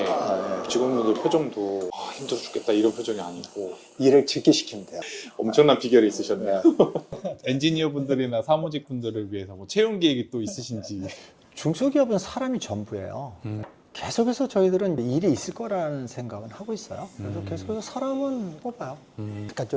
아, 직원분들 표정도 힘들어 죽겠다 이런 표정이 아니고 일을 직기시키면 돼요. 엄청난 비결이 있으셨네요. 엔지니어 분들이나 사무직 분들을 위해서 뭐 채용 계획이 또 있으신지. 중소기업은 사람이 전부예요. 계속해서 저희들은 일이 있을 거라는 생각은 하고 있어요. 그래서 계속해서 사람은 뽑아요. 그러니까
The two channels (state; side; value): identical; both; correlation 1.00